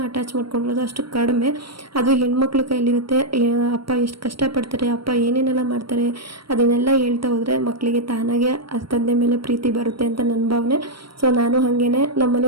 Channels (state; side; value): late; left; 0.74 ms